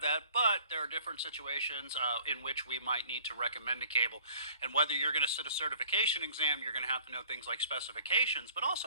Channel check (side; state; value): both; inverted; correlation -0.53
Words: that, but there are different situations in which we might need to recommend a cable. And whether you're going to sit a certification exam, you're going to have to know things like specifications, but